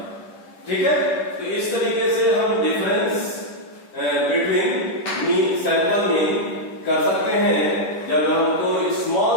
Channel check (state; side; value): late; right; 10 ms